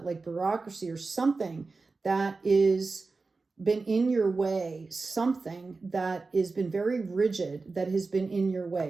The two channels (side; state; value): left; quieter; 3.9 dB